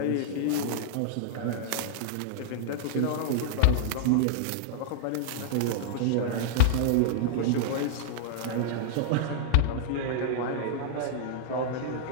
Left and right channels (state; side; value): different; both; correlation -0.01